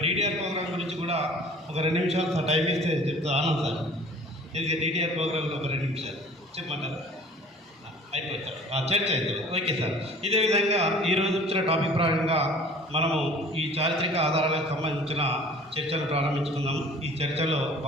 DDR ప్రోగ్రామ్ గురించి కూడా ఒక 2 నిమిషాలు టైం ఇస్తే చెప్తా ఆనంద్ సార్. ఇది DDR ప్రోగ్రాంలో ఒక 2 నిమిషాలు చెప్పమంటారా? అయిపోతారు, చర్చ అవుతుంది. Okay sir. ఇదే విధంగా ఈరోజు వచ్చిన టాపిక్ ప్రకారంగా మనము ఈ చారిత్రక ఆధారాలకు సంబంధించిన చర్చలు ప్రారంభించుకుందాం. ఈ చర్చలో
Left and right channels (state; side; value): normal; both; correlation 0.48